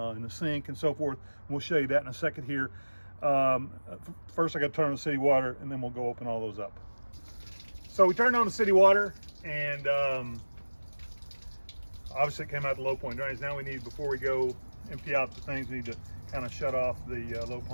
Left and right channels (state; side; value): inverted; both; correlation -1.00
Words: the sink and so forth. We'll show you that in a second here. First I got to turn on the city water, and then we'll go open all those up. So we turned on the city water, and obviously it came out the low point drains. Now before we go empty out the things, we need to kind of shut off the low